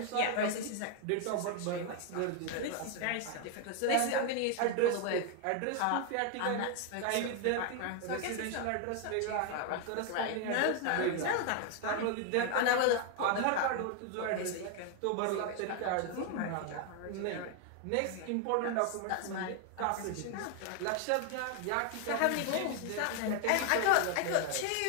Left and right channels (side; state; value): both; different; correlation 0.01